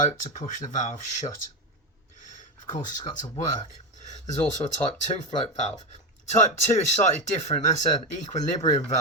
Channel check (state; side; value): normal; both; correlation 0.13